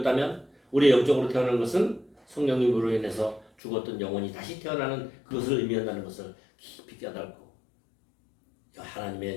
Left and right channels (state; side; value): drops out; right; at 3.5 s